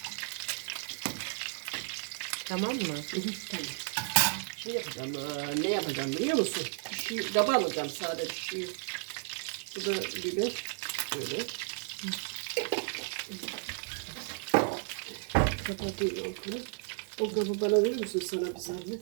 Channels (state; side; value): silent; left; 56 dB below the other